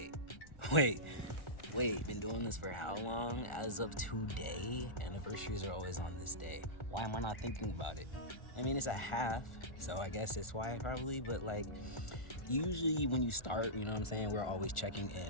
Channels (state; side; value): late; right; 1.4 ms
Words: wait. Been doing this for how long? As of today, anniversaries are always on this day. Why am I not thinking about it? I mean, it's a half, so I guess it's why probably, but like, usually when you start, you know what I'm saying, we're always checking